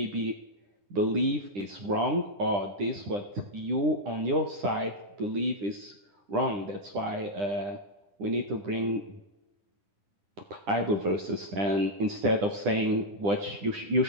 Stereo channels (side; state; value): left; late; 10 ms